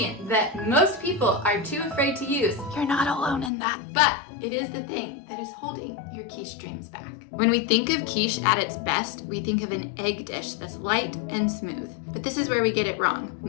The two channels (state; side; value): drops out; right; at 3.5 s